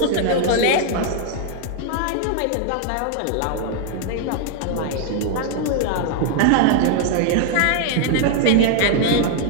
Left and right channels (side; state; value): both; different; correlation 0.00